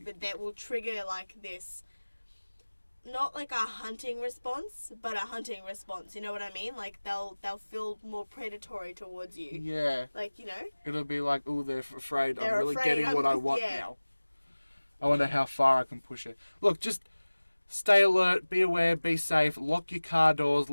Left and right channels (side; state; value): both; inverted; correlation -1.00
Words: But that will trigger like this, not like a hunting response, but a hunting response. You know what I mean? Like they'll feel more predatory towards you. Yeah. Like, you know? It'll be like, oh, they're afraid. They're I'm really afraid getting what I want yeah. now. I wonder how far I can push it. Look, just stay alert, be aware, be safe, lock your car doors,